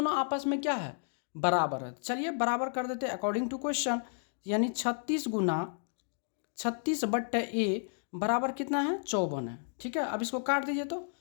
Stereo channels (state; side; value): silent; right; digital silence